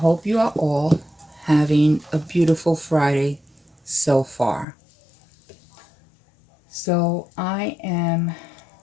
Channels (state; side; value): drops out; right; at 4.7 s